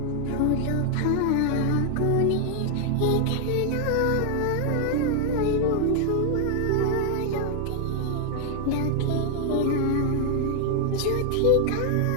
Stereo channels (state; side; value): different; both; correlation 0.00